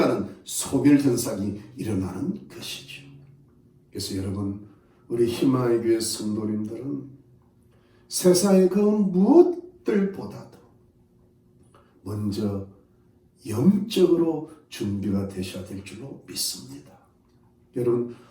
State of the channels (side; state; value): both; identical; correlation 1.00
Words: 소멸현상이 일어나는 것이죠. 그래서 여러분, 우리 희망의 교회 성도님들은 세상의 그 무엇들보다도 먼저 영적으로 준비가 되셔야 될 줄로 믿습니다. 여러분,